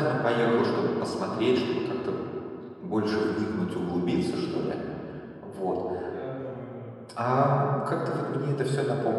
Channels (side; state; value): both; identical; correlation 1.00